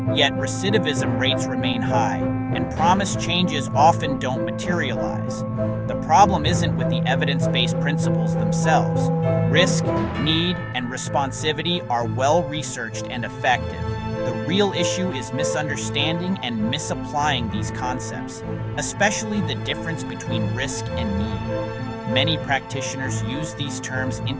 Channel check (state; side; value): identical; both; correlation 1.00